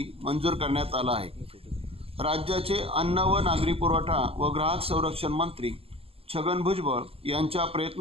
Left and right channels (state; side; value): late; left; 0.28 ms